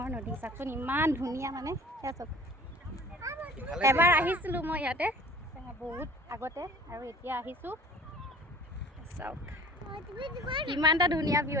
নদী। চাওকচোন ইমান ধুনীয়া, মানে সেয়া চাওক। এবাৰ আহিছিলোঁ মই ইয়াতে বহুত আগতে, আৰু এতিয়া আহিছোঁ। চাওক কিমান এটা ধুনীয়া ভিউ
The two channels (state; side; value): normal; both; correlation 0.46